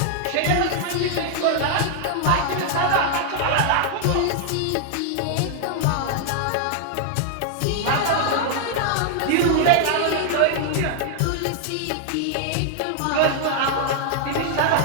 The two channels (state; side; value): different; both; correlation 0.00